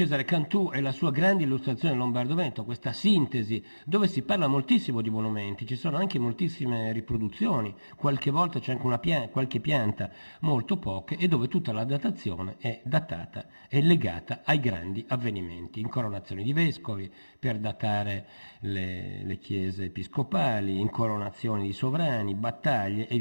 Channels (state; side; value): inverted; both; correlation -1.00